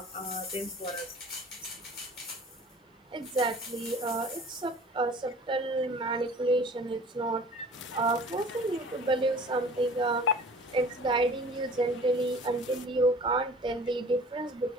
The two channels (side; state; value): both; normal; correlation 0.46